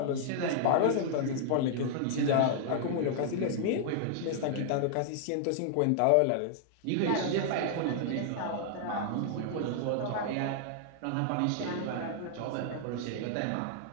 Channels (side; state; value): both; different; correlation -0.01